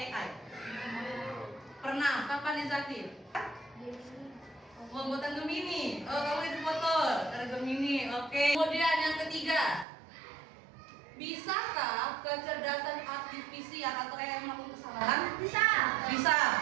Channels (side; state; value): left; drops out; at 9.9 s